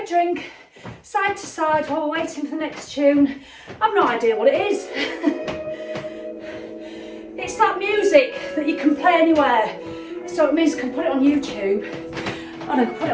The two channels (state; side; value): identical; both; correlation 1.00